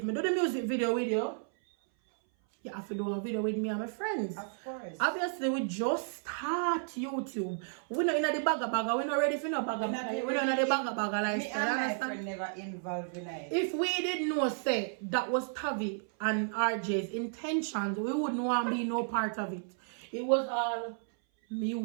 I do the music video with you, you have to do a video with me and my friends. Of course. Obviously, we just start YouTube. We're not in the bagger. We're not ready for no bagger. We're not in the bagger lifestyle. Me and my friend never involved in it. If we didn't know, say, that was Tavi and RJ's intentions, we wouldn't want to be no part of it. It was all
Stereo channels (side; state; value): left; silent; 56 dB below the other